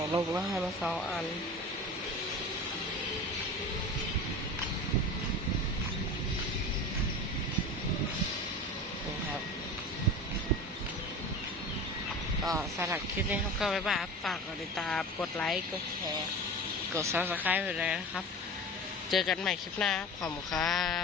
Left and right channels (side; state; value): both; normal; correlation 0.33